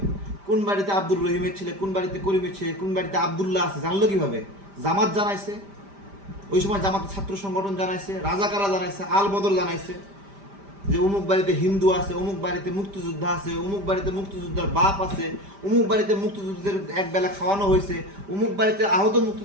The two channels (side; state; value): left; late; 5.1 ms